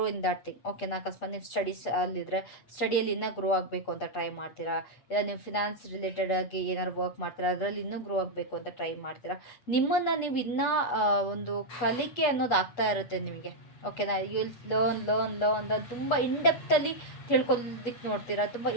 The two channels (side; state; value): right; late; 8.3 ms